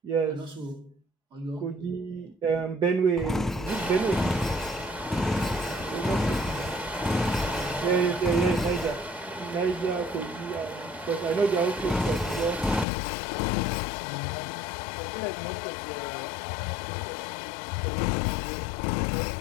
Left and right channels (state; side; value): drops out; right; at 12.9 s